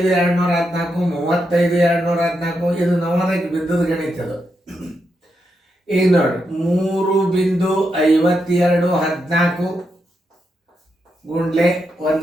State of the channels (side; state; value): both; normal; correlation 0.83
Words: 35,214 ಇದು ನವೋದಯಕ್ಕೆ ಬಿದ್ದದ ಗಣಿತ. ಇದು ಈಗ ನೋಡಿ 3.5214 ಗುಂಡ್ಲೆ